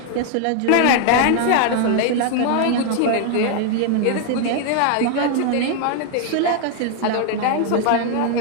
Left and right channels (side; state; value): both; different; correlation 0.00